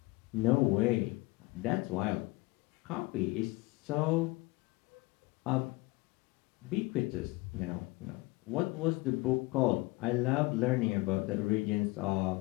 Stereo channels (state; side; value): quieter; right; 22.9 dB